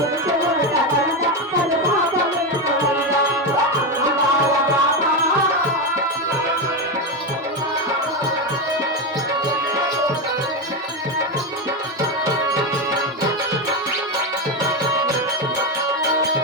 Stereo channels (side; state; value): both; normal; correlation 0.12